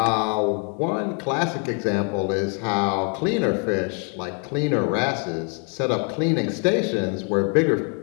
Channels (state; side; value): quieter; right; 40.0 dB